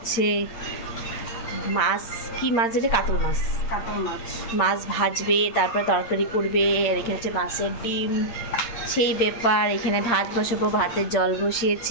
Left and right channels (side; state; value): right; late; 8.7 ms